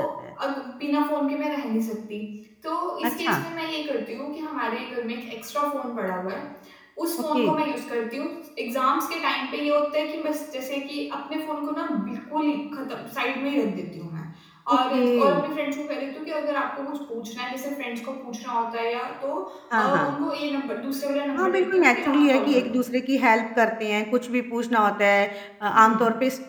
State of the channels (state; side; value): identical; both; correlation 1.00